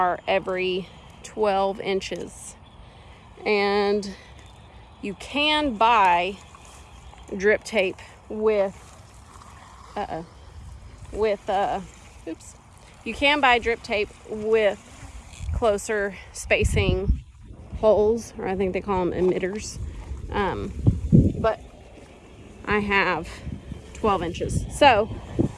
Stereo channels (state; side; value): identical; both; correlation 1.00